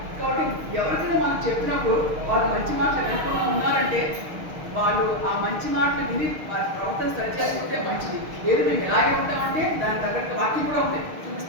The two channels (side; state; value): left; late; 6.5 ms